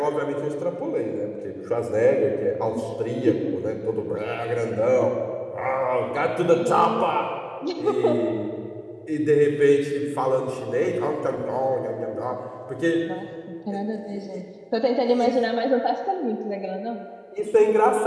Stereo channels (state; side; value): identical; both; correlation 1.00